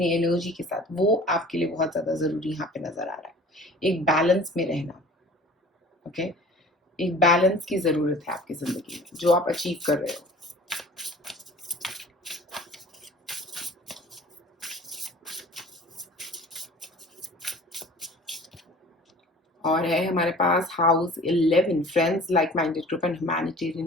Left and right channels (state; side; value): normal; both; correlation 0.45